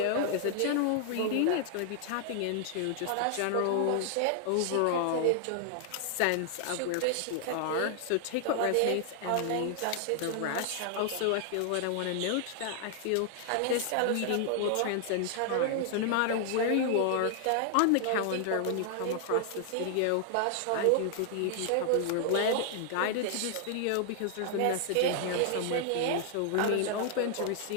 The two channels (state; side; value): different; both; correlation 0.00